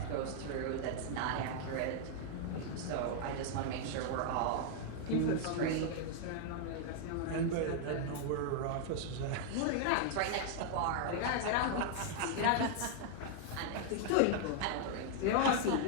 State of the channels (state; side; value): different; both; correlation 0.00